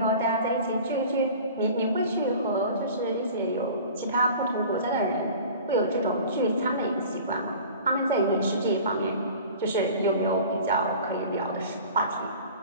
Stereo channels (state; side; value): inverted; both; correlation -0.42